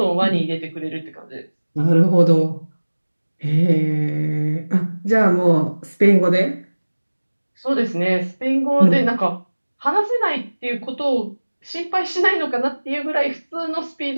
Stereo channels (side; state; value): both; inverted; correlation -1.00